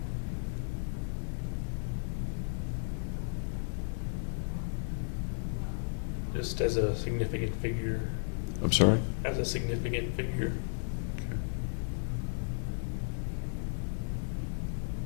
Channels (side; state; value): right; silent; digital silence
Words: Just as a significant figure. I'm sorry? As a significant figure. Okay.